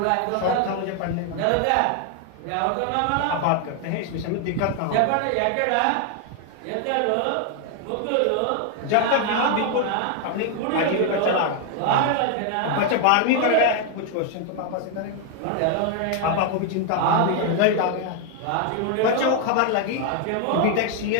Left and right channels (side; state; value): both; different; correlation 0.00